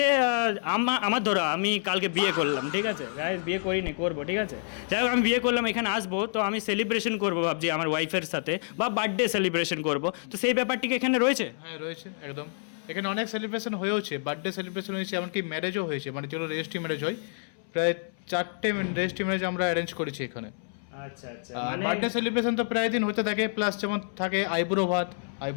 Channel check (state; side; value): silent; right; 59 dB below the other